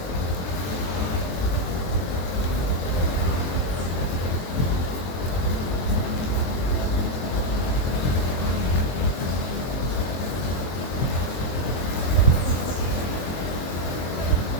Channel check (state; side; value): late; right; 23 ms